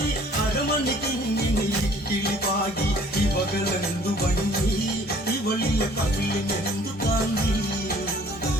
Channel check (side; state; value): both; normal; correlation 0.54